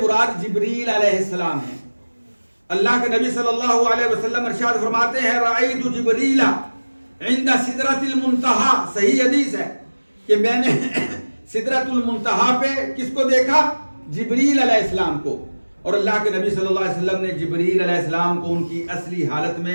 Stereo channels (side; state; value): both; inverted; correlation -1.00